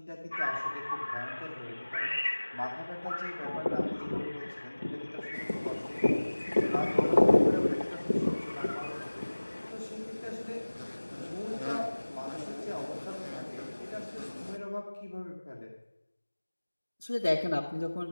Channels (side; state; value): both; inverted; correlation -1.00